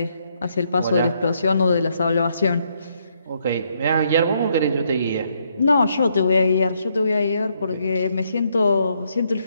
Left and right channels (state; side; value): inverted; both; correlation -0.74